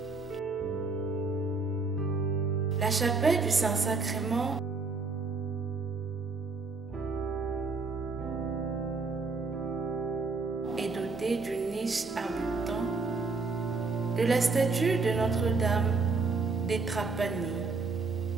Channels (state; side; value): quieter; left; 4.1 dB